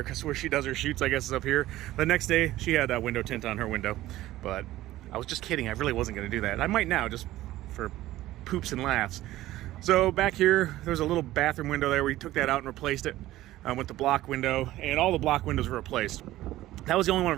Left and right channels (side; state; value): left; quieter; 15.6 dB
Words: because where she does her shoots, I guess, is up here. The next day, she had a window tint on her window, but I was just kidding. I really wasn't gonna do that. I might now, just for poops and laughs. So back here, there's a little bathroom window there. We took that out and replaced it with the block window, and all the block windows were replaced. That was the only one